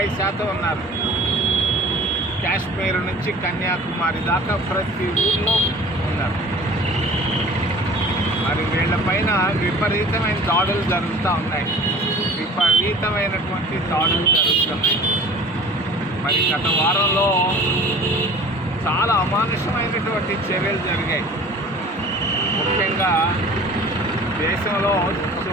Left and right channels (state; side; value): normal; both; correlation 0.45